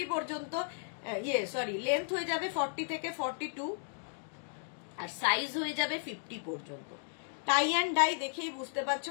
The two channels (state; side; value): silent; right; digital silence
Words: পর্যন্ত, লেন্থ হয়ে যাবে 40 থেকে 42 আর সাইজ হয়ে যাবে 50 পর্যন্ত। টাই অ্যান্ড ডাই দেখেই বুঝতে পারছো